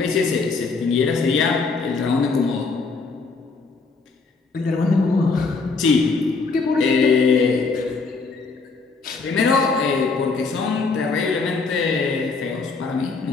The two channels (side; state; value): right; quieter; 4.3 dB